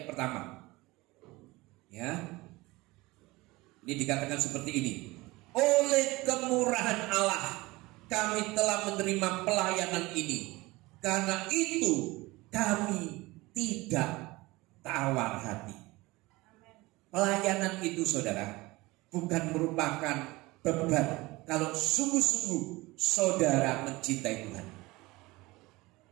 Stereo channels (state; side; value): quieter; left; 21.3 dB